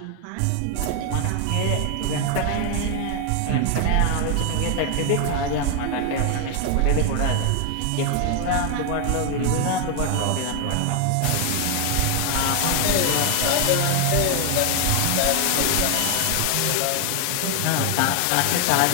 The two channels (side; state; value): both; different; correlation 0.00